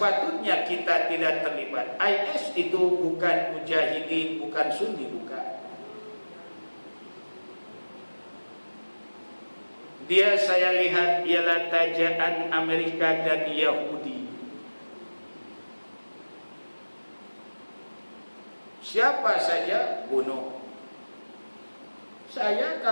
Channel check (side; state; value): both; inverted; correlation -1.00